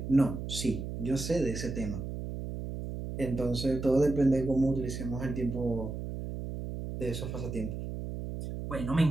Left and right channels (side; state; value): right; noise; hum, 6 dB below the sound